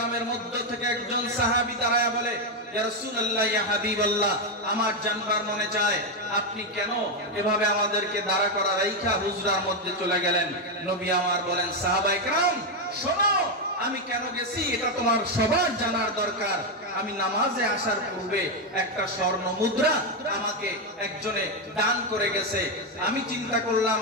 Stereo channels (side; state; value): both; normal; correlation 0.05